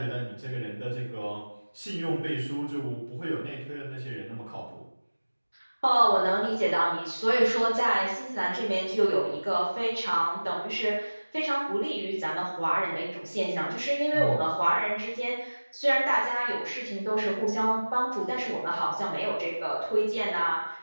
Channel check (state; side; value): inverted; both; correlation -1.00